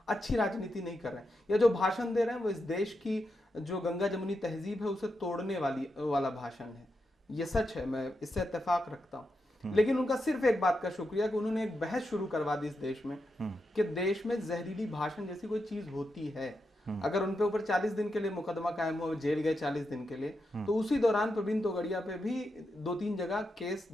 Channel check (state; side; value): normal; both; correlation 0.86